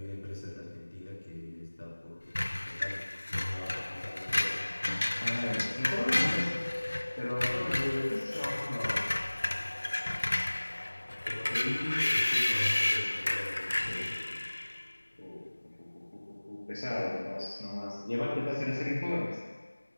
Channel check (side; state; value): both; inverted; correlation -1.00